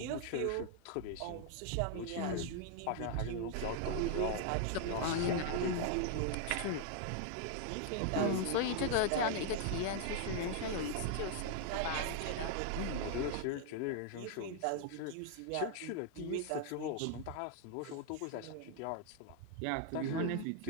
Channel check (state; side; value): different; both; correlation 0.00